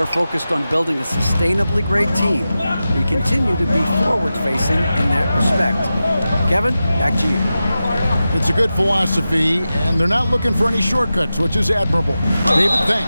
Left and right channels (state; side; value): inverted; both; correlation -0.93